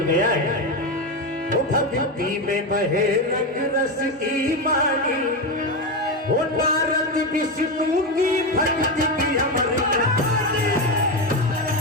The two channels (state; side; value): normal; both; correlation 0.13